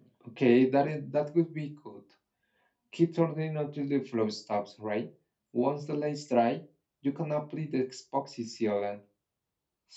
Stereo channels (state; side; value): identical; both; correlation 1.00